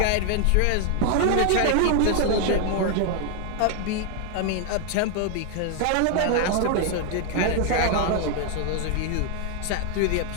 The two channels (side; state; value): both; different; correlation 0.00